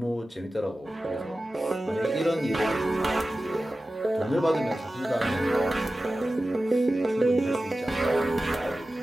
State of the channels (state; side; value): normal; both; correlation 0.95